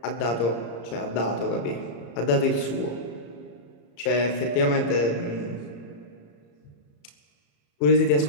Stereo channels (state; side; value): late; right; 34 ms